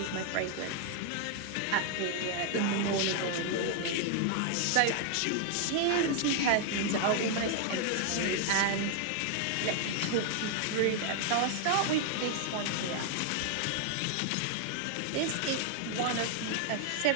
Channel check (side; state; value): both; different; correlation 0.00